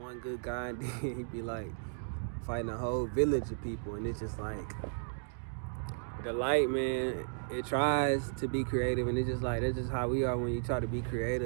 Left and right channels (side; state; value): left; silent; digital silence